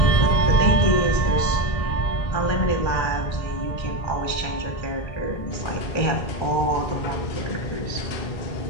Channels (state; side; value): late; right; 1.3 ms